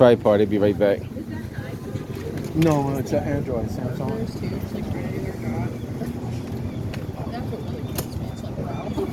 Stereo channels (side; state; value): both; identical; correlation 1.00